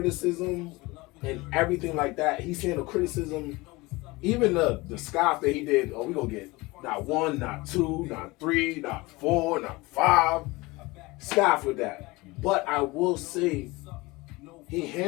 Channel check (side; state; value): right; quieter; 22.6 dB